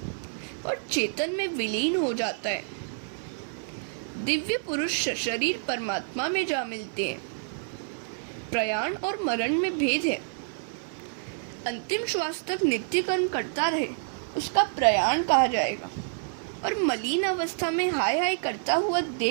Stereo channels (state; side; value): silent; left; 59 dB below the other